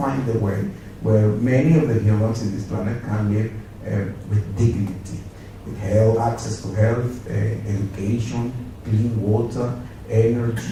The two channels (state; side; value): identical; both; correlation 1.00